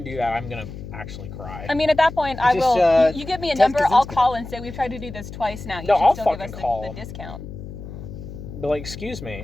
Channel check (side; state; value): left; noise; hum, 11 dB below the sound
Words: do that, I'm gonna actually cry. I mean, at that point, I Just, will. You give me a Ted number, I'll Kaczynski. call and say we've tried to do this twice now. You No, should I'll still give us fucking call the 'em. discount. But like, excuse